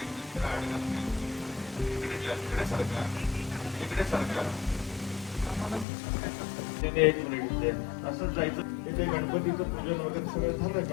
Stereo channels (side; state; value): right; drops out; at 5.9 s